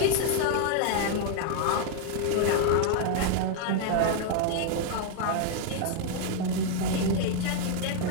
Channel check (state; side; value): different; both; correlation 0.00